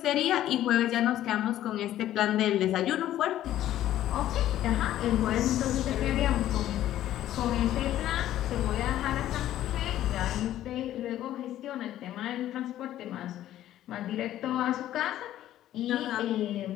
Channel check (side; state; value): right; quieter; 12.9 dB